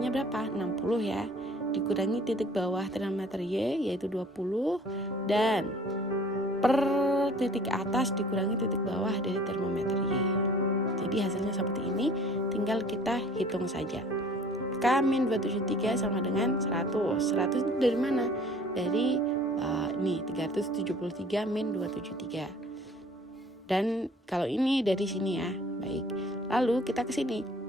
berapa? 60 ya. Dikurangi titik bawah termometer Y yaitu 20, dan per titik atas dikurangi titik bawah dari termometer Y. Jadi hasilnya seperti ini, tinggal kita hitung saja. K min 273 sama dengan 100. 100 itu dari mana? Dari 373 min 273. Dan kalau ini dari sini ya. Baik. Lalu kita ke sini.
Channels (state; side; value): normal; both; correlation 0.51